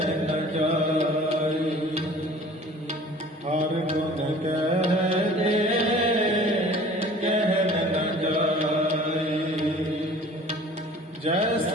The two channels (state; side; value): normal; both; correlation 0.47